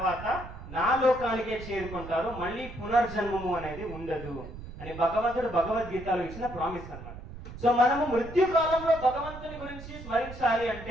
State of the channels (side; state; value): right; noise; rumble, 13 dB below the sound